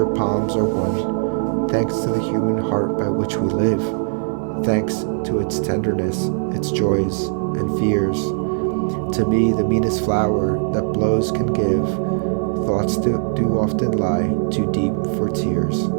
palms are won, thanks to the human heart by which we live, thanks to its tenderness, its joys, and fears. To me the meanest flower that blows can give, thoughts do often lie too deep for tears.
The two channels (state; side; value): silent; left; digital silence